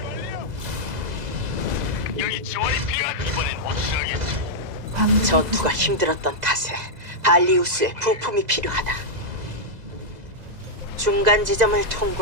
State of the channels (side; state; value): left; late; 2.0 ms